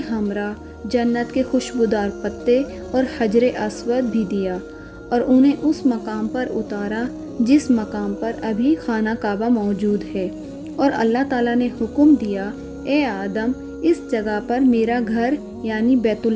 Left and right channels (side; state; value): both; identical; correlation 1.00